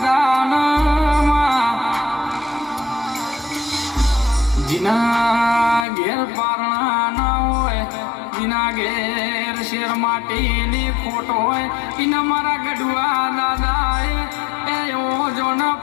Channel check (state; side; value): drops out; right; at 5.9 s